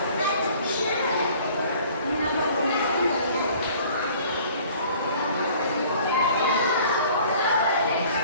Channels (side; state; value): both; inverted; correlation -0.52